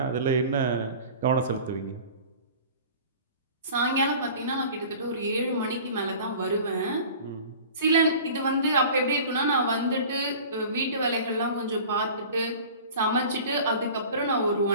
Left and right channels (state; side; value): inverted; both; correlation -0.41